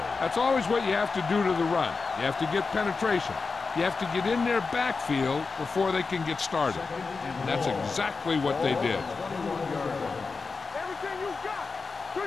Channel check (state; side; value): quieter; right; 4.5 dB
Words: That's always what you have to do to the run. You have to get penetration. You have to get in their backfield before they can get started. And that's exactly what they did. Everything you got.